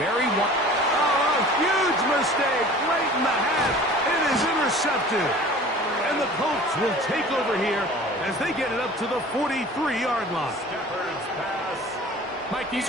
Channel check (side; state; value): both; normal; correlation 0.44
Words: Huge mistake late in the half. It is intercepted. And the Colts will take over here as they get it up to the 43-yard line. Mike,